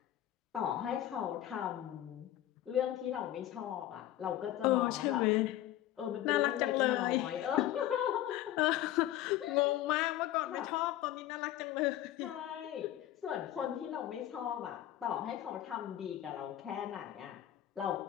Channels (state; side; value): quieter; right; 13.1 dB